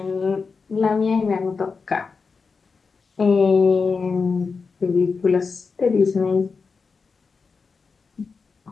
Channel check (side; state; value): right; quieter; 4.9 dB